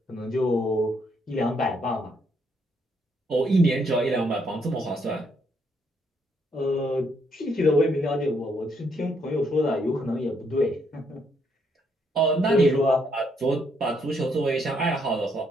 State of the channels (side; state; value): both; normal; correlation 0.73